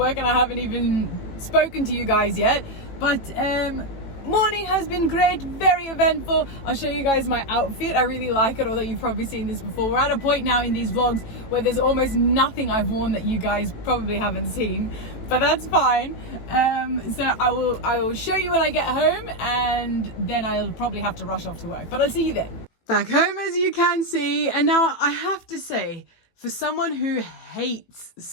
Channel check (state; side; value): late; right; 18 ms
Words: and I haven't even spoken to you guys yet. But morning has been great, very eventful. I'll show you guys my outfit. I really like it, although you've probably seen this before. We're at a point now in these vlogs where there's almost nothing I've worn that you guys probably haven't seen, but that's fine. So I will show you when I get home, and then I'll probably have to rush off to work, but I'll see you then. Back home, as you can see, and now I have to say, for someone who hates